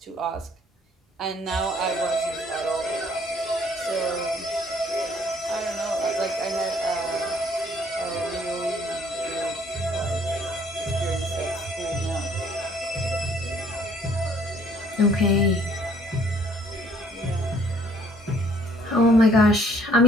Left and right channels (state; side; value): normal; both; correlation 0.61